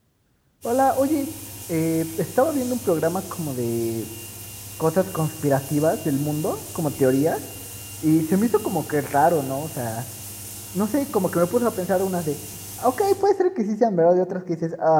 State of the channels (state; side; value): identical; both; correlation 1.00